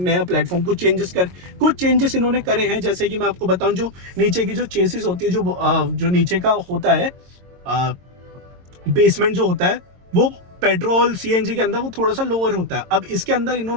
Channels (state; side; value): late; left; 22 ms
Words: प्लेटफॉर्म कुछ चेंजेस इन्होंने करे हैं। जैसे कि मैं आपको बताऊं, जो नीचे की जो चेसिस होती है, जो नीचे का होता है बेसमेंट जो होता है, वो पेट्रोल सीएनजी के अंदर वो थोड़ा सा लोअर होता है। अब इसके अंदर